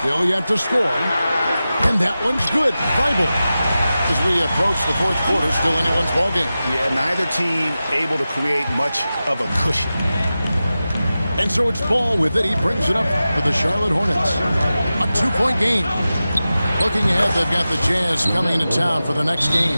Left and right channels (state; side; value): inverted; both; correlation -0.94